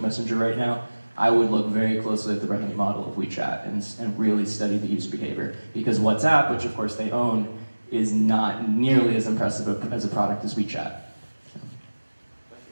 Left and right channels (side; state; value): both; inverted; correlation -1.00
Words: Messenger right now, I would look very closely at the revenue model of WeChat and really study the user behavior. Because WhatsApp, which of course they own, is not nearly as impressive as a product as WeChat.